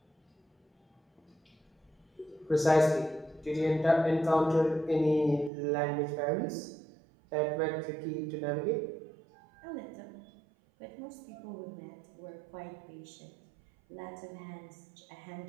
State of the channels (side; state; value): left; drops out; at 5.5 s